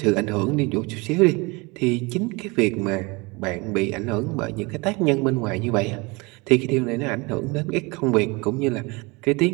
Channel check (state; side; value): quieter; left; 26.5 dB